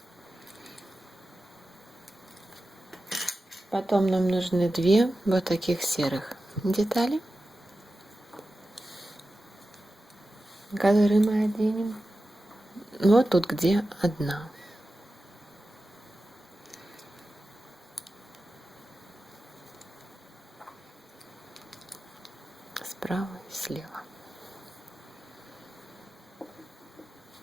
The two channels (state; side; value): normal; both; correlation 0.93